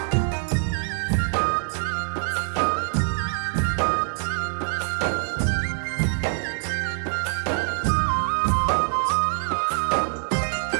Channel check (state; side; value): silent; left; 62 dB below the other